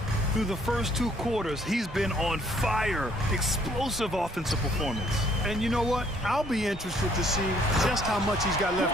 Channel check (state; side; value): normal; both; correlation 0.64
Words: Through the first 2 quarters, he's been on fire. Explosive offensive performance. And you know what? I'll be interested to see just how much he's got